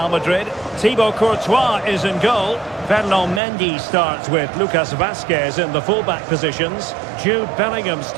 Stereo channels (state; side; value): drops out; left; at 3.4 s